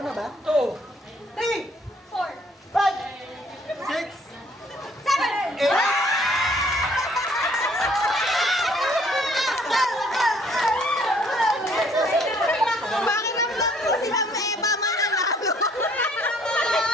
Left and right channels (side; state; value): both; normal; correlation 0.61